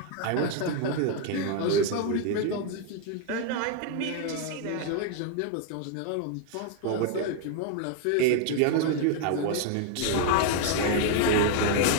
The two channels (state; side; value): different; both; correlation 0.00